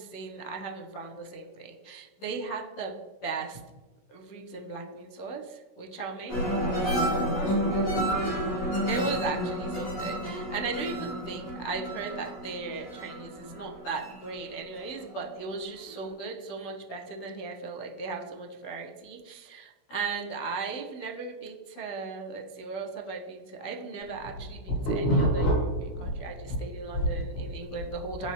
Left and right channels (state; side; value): late; right; 16 ms